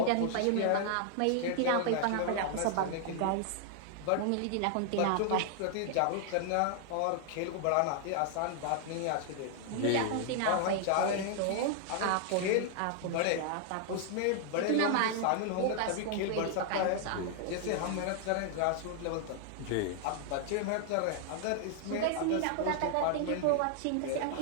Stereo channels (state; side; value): different; both; correlation 0.00